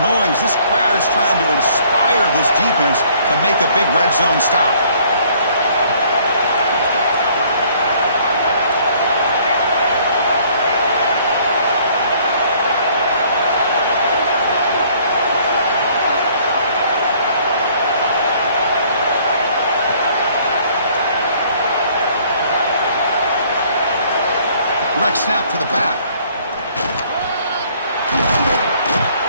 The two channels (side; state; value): both; inverted; correlation -0.60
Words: This crowd is trying to inspire this defense to make a big red zone stop. Direct snap to the back.